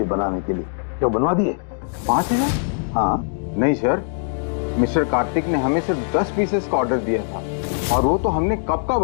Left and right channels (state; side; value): silent; right; digital silence